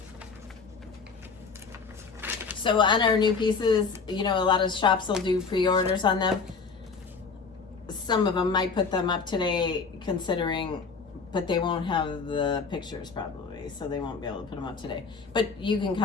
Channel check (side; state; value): right; quieter; 5.0 dB